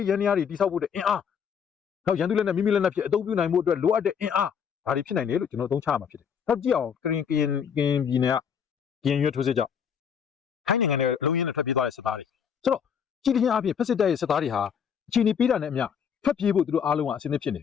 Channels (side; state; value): right; quieter; 7.4 dB